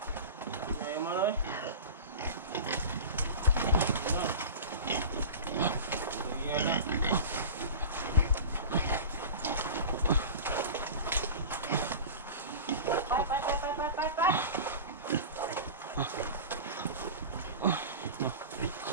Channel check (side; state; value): both; inverted; correlation -0.32